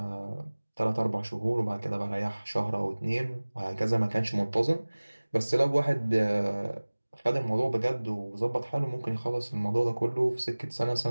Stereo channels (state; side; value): inverted; both; correlation -1.00